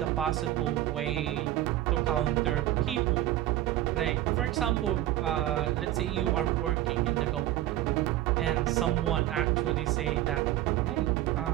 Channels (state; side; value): quieter; left; 14.3 dB